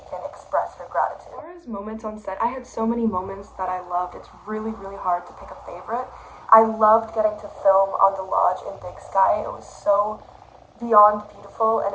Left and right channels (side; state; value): both; identical; correlation 1.00